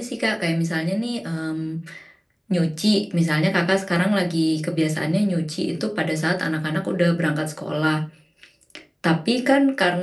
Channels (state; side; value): identical; both; correlation 1.00